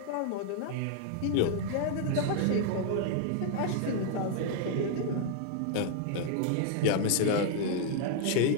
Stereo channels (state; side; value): different; both; correlation 0.00